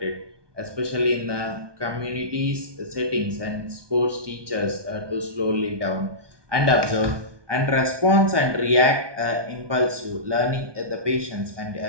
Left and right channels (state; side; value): late; left; 1.2 ms